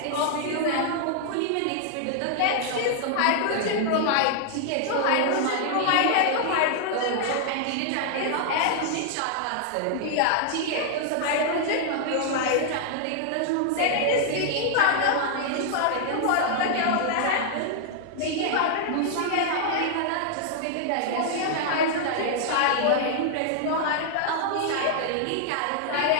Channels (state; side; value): different; both; correlation -0.01